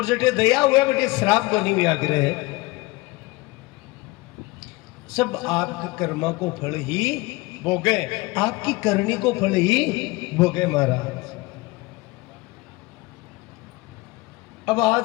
जटे दया हुए बटे श्राप को नहीं आग्रह है। सब आपके कर्मा को फल ही भोगे, आपकी करनी को फल ही भोगे महाराज। अब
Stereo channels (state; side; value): quieter; right; 22.1 dB